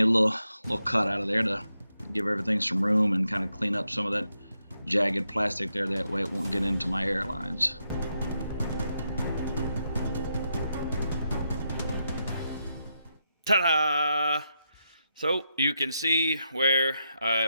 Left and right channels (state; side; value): inverted; both; correlation -0.83